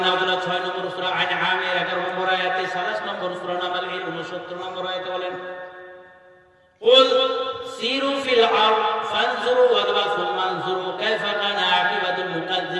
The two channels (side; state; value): both; identical; correlation 1.00